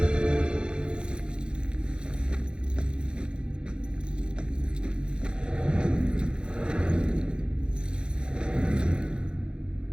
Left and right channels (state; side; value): late; left; 0.052 ms